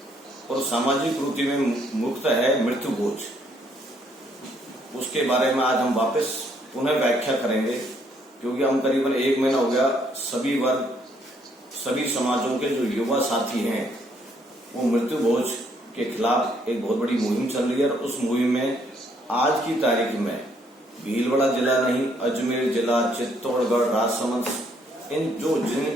और सामाजिक कुरीति में मुक्त है मृत्यु भोज, उसके बारे में आज हम वापस पुनः व्याख्या करेंगे, क्योंकि हम करीबन 1 महीना हो गया सभी वर्ग सभी समाजों के जो युवा साथी हैं वो मृत्यु भोज के खिलाफ एक बहुत बड़ी मुहिम चल रही है। और उस मुहिम में आज की तारीख में भीलवाड़ा जिला नहीं, अजमेर जिला, चित्तौड़गढ़, राजसमंद,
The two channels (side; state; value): both; normal; correlation 0.69